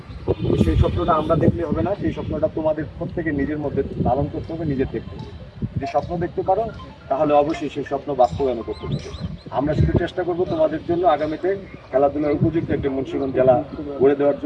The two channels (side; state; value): both; identical; correlation 1.00